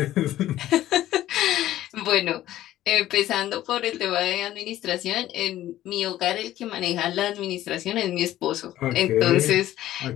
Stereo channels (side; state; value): right; quieter; 13.8 dB